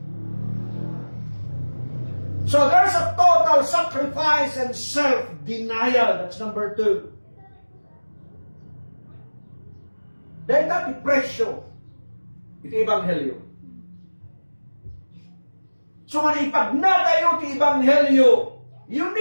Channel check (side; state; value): both; inverted; correlation -1.00